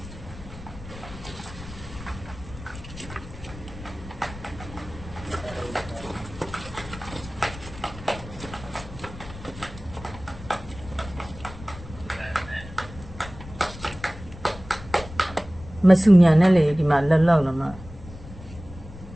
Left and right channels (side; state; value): left; noise; rumble, 15 dB below the sound